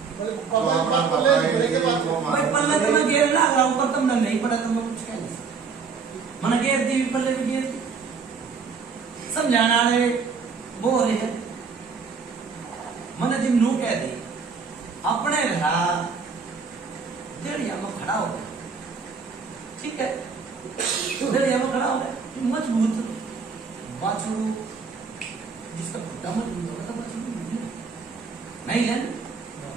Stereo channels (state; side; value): quieter; left; 5.4 dB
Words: भाई पल्ला तो मैं घेर ला रहा हूँ पर तुमने नहीं पढ़ा तो मैं कुछ कह नहीं सकता मैंने घेर दी पल्ले भी घेर दी समझाना वो रहे मैंने जिम नू कह दी अपने घर देड़िया में खड़ा हो गया, ठीक है, देड़िया में खड़ा हो गया, मजबूत बाछड़ू जिसका खुट्टा मजबूत होगा तो बाछड़ू नहीं है